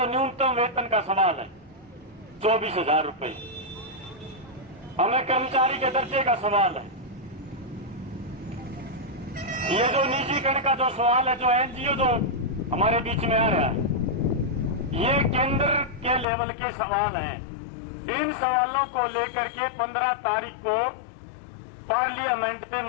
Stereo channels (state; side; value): drops out; right; at 16.2 s